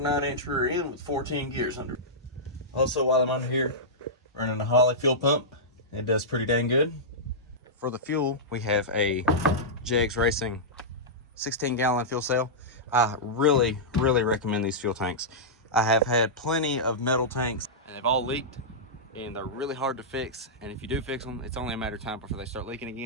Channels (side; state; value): both; normal; correlation -0.13